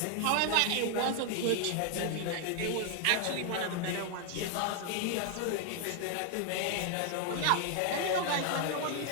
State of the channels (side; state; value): both; different; correlation 0.00